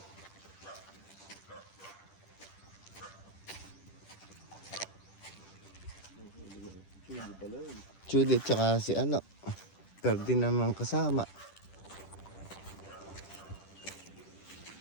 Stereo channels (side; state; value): right; late; 10 ms